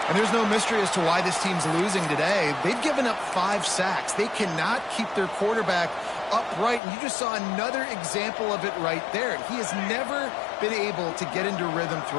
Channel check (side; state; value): right; drops out; at 6.8 s